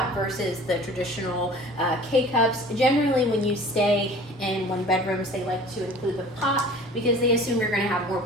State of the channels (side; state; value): both; normal; correlation 0.45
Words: versus the traditional K-cups. Generally, when you stay in one bedrooms, they like to include the pot because they assume you're going to have more